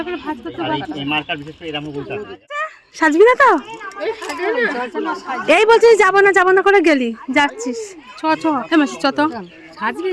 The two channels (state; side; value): identical; both; correlation 1.00